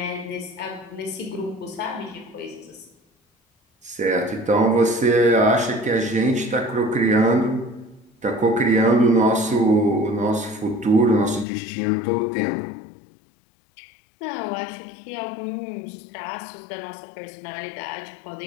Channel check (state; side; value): drops out; right; at 11.5 s